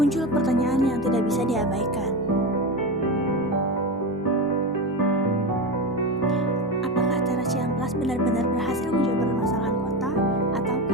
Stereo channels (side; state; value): right; noise; rumble, 29 dB below the sound